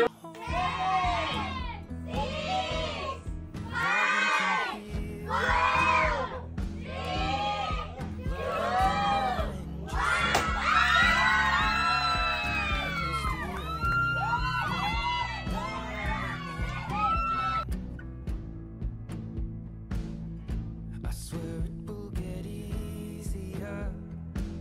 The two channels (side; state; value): both; identical; correlation 1.00